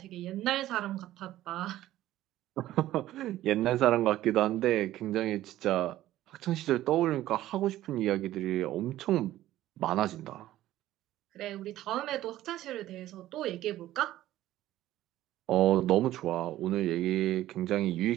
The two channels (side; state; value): left; quieter; 14.4 dB